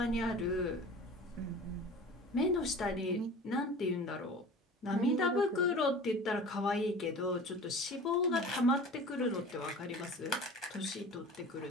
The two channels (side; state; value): both; normal; correlation 0.39